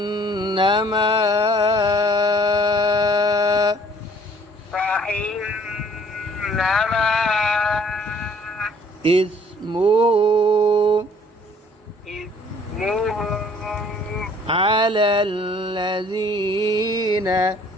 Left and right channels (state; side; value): normal; both; correlation 0.57